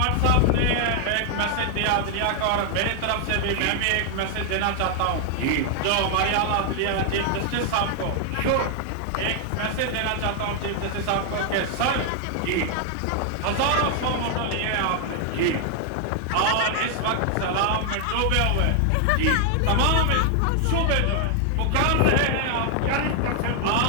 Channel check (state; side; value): different; both; correlation 0.00